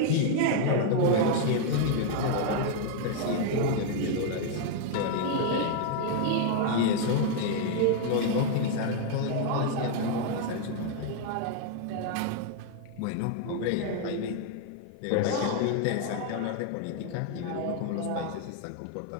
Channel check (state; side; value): different; both; correlation 0.00